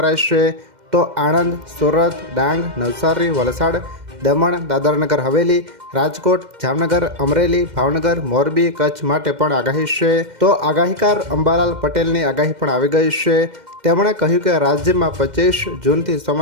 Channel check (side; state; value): left; late; 2.1 ms